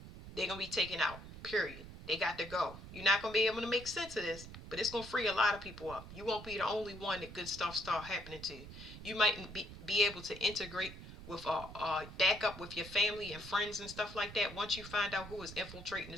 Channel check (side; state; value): right; noise; rumble, 13 dB below the sound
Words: they're going to be taken out. Period. They got to go. You're not going to be able to make sense of this, but it's going to free a lot of people up. You won't be the only one that good stuff start happening to. You might be able to integrate with back up with your family and friends and stuff like that once you find out who is infiltrating